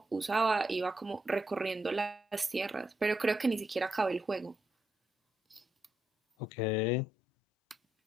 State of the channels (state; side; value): normal; both; correlation 0.81